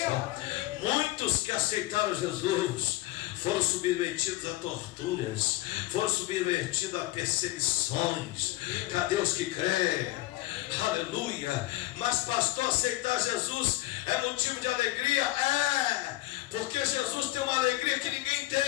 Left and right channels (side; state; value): right; quieter; 18.3 dB